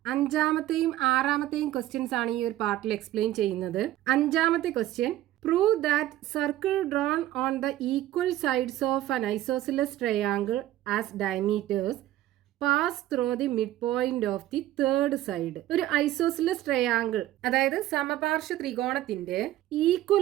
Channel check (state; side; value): quieter; left; 14.1 dB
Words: അഞ്ചാമത്തെയും ആറാമത്തെയും questions ആണ് ഈ ഒരു പാർട്ടിൽ എക്സ്പ്ലെയിൻ ചെയ്യുന്നത്. അഞ്ചാമത്തെ question, prove that circle drone on the equal sides of an isosceles triangle as diameters pass through the mid point of the third side. ഒരു isosceles triangle, അതായത് സമപാർശ്വ ത്രികോണത്തിന്റെ